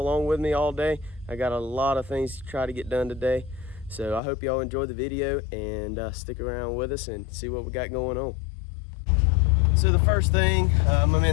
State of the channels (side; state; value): right; drops out; at 4.2 s